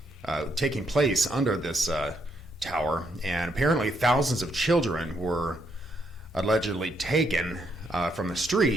taking place under this tower, and apparently thousands of children were allegedly taken from the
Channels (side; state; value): both; normal; correlation 0.76